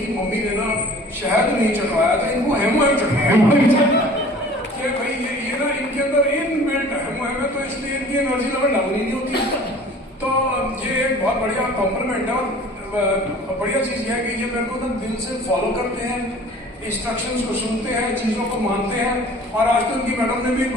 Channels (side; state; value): both; normal; correlation 0.47